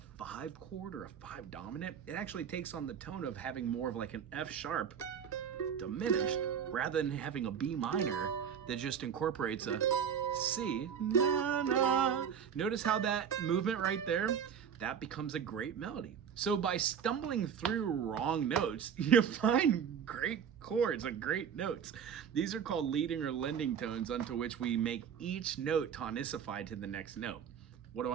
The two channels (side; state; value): left; quieter; 7.8 dB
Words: 5 chord or a 5 dominant. It actually takes on the tone of having more of like an F sharp diminished rather than having a B minor that just incorporates a C. Na, na. Notice how that movement right there, that becomes a great melody. So by stumbling through wrong notes, you find great chords and great notes. These are called leading or lending tones, unto which we make each note tonicified to the next note. What do